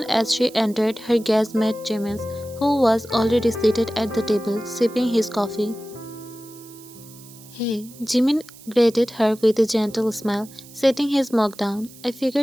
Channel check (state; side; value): noise; right; hiss, 21 dB below the sound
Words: as she entered, her gaze met Jimin's, who was already seated at the table, sipping his coffee. Hey, Jimin greeted her with a gentle smile, setting his mug down. I